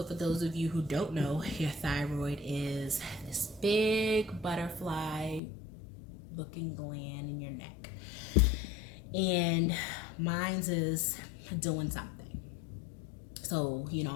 for those of you who don't know, your thyroid is this big butterfly looking gland in your neck. And mine's is doing something. So,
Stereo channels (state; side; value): drops out; right; at 5.4 s